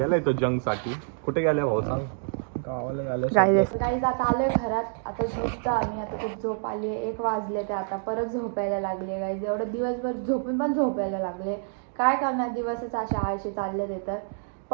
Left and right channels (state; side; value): silent; left; digital silence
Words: तो जंग साठी. कुठे गेलाय भाऊ सांग? गावाला झालं गाईज आता आलोय घरात आता झोपतो आम्ही आता खूप झोप आली 1 वाजले ते आता परत झोपायला लागले गाईज एवढं दिवसभर झोपून पण झोपायला लागले काय करणार दिवसच अशा आळशी चालले ते तर